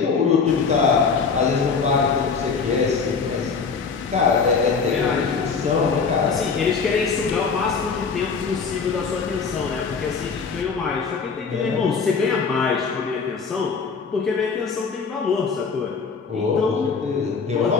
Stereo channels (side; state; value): right; quieter; 5.3 dB